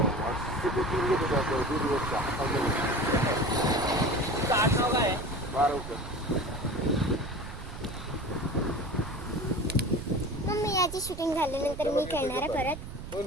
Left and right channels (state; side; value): noise; right; rumble, 10 dB below the sound